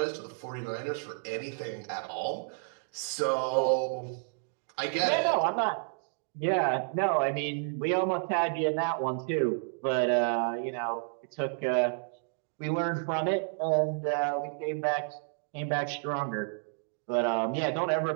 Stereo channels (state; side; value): silent; left; digital silence